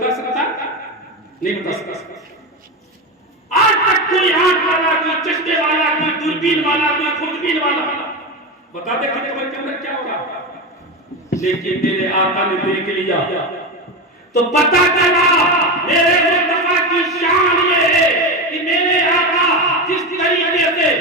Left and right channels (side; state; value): both; normal; correlation 0.17